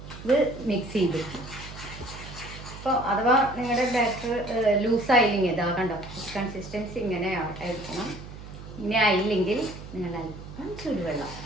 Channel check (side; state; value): right; noise; hum, 13 dB below the sound